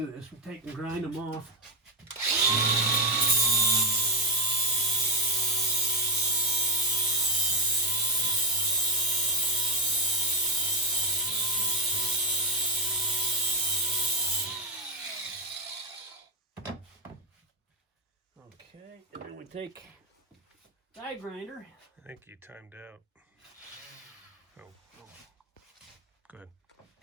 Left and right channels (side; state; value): both; normal; correlation 0.10